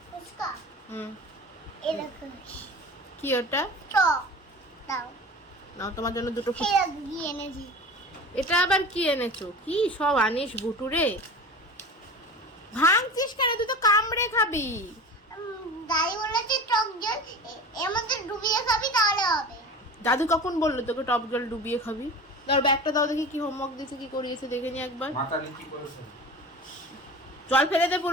ফুচকা হুম, এরকম কি ওটা? টক দাও, নাও তোমার জন্য দুটো ফুচকা। খেয়ে গিয়ে এনেছি। এটা আবার কি এনেছো? কি সব আনিস বুটুরে, ভাঙছিস কেন? তুই তো কামড়ে খাবি। দাদি বলেছে টক জল এর মধ্যে ডুবিয়ে খাবি তাহলে হবে। দাদু কখন বললো তোকে টক জল ডুবিয়ে খাবি? ধর ব্যাগটা দাও দেখি, কি হোমওয়ার্ক দিয়েছে, কি করিয়েছে দেখে নি একবার। মাথা নিচু করেছে। জল ফেলে দে,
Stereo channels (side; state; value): both; normal; correlation 0.34